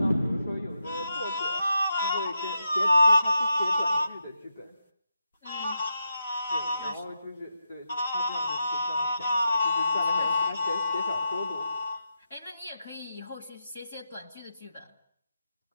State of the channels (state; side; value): inverted; both; correlation -0.87